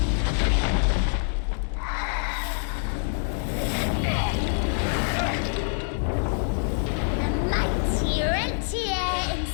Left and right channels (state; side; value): silent; right; digital silence